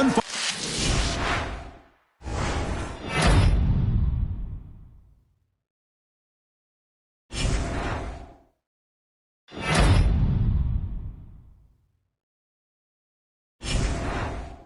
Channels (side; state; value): both; identical; correlation 1.00